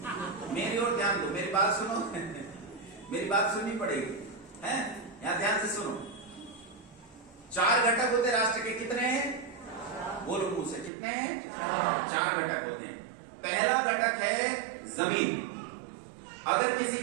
मेरी ओर ध्यान दो, मेरी बात सुनो मेरी बात सुननी पड़ेगी, है? यहां ध्यान से सुनो। 4 घटक होते राष्ट्र के। कितने हैं? बोलो मुंह से, कितने हैं? 4 घटक होते हैं। पहला घटक है जमीन। अगर किसी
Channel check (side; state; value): left; drops out; at 10.9 s